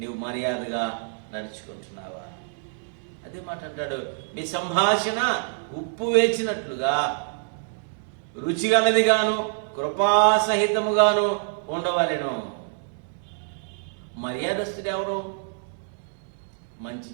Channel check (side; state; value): left; silent; 61 dB below the other